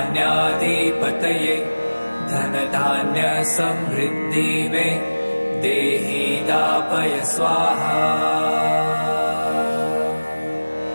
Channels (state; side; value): inverted; both; correlation -1.00